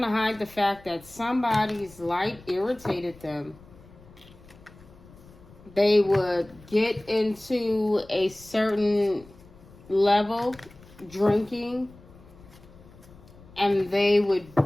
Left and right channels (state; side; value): noise; left; rumble, 23 dB below the sound